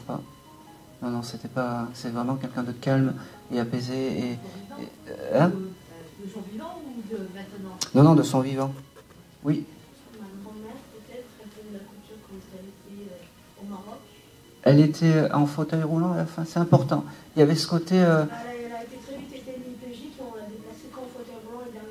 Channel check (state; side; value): identical; both; correlation 1.00